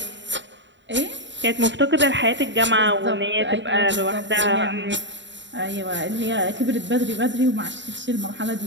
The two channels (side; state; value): left; late; 0.53 ms